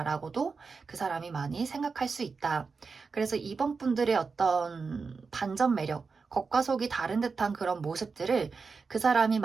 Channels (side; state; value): left; quieter; 4.8 dB